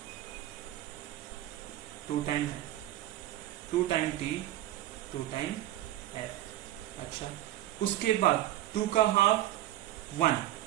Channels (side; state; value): left; quieter; 14.2 dB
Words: 2 टाइम है, 2 टाइम T, 2 टाइम F। अच्छा, उसके बाद 2 का हाफ 1,